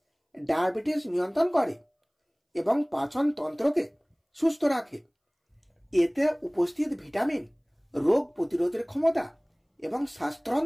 ডায়াবেটিস নিয়ন্ত্রণ করে এবং পাচন তন্ত্রকে সুস্থ রাখে। এতে উপস্থিত ভিটামিন রোগ প্রতিরোধের ক্ষমতা এবং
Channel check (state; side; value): identical; both; correlation 1.00